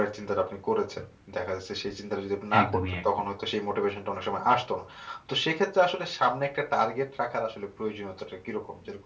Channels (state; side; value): identical; both; correlation 1.00